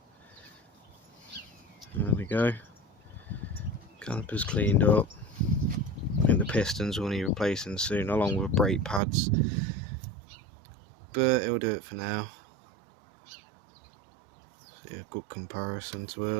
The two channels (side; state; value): left; drops out; at 9.0 s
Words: there we go. Caliper's cleaned up. I think the pistons will need replacing soon, along with brake pads. But it'll do it for now. See a good comparison to